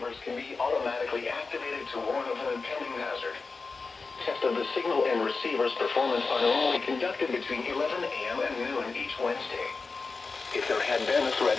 can be automatically activated to warn of an impending hazard. Tests of the signal and receiver's performance are normally conducted between 11 a.m. and noon each Wednesday. If there had been a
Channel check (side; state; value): right; quieter; 4.3 dB